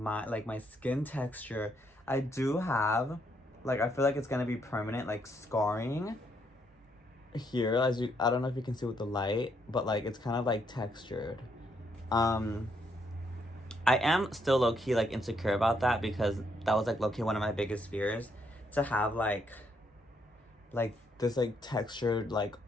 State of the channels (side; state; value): both; normal; correlation 0.74